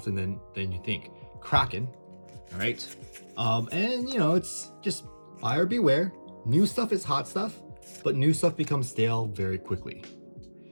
than you think. Kraken, all right, and you know, it's just buyer beware. New stuff is hot stuff, but new stuff becomes stale very quickly.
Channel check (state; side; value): inverted; both; correlation -1.00